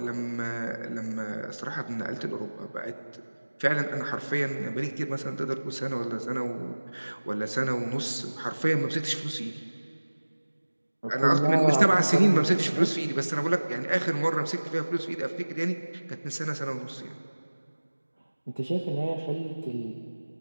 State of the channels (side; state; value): both; inverted; correlation -1.00